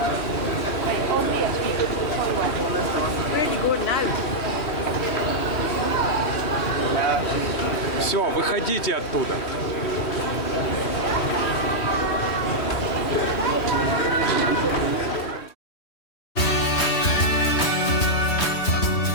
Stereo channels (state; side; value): late; right; 3.2 ms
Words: Все, выходите оттуда.